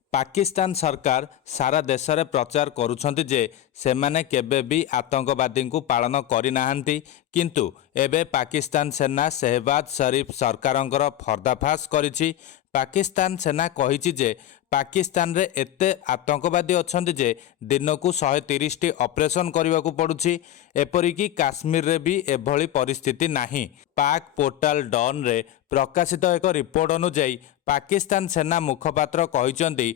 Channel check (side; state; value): right; quieter; 12.0 dB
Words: पाकिस्तान सरकार सारा देश में प्रचार करुछंती जे सेमाने केबे भी आतंकवादी को पालन करि नाहंती, किंतु एबे पाकिस्तान सेना शहबाज शरीफ सरकारंकर पर्दाफाश करिछि। पाकिस्तान सेना कहिछि जे पाकिस्तान रे एते आतंकवादी अछंती जे दिनकू 130 टी ऑपरेशन करबाकू पड़ुछि। एपरिकी काश्मीर रे भी एभली परिस्थिति नाही। पाक पोर्टाल डॉन रे प्रकाशित एक रिपोर्ट अनुଯାयी पाकिस्तान सेना मुखपात्र कहिसंती